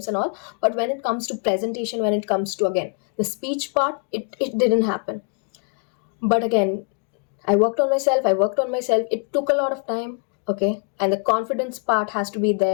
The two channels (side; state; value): right; quieter; 37.3 dB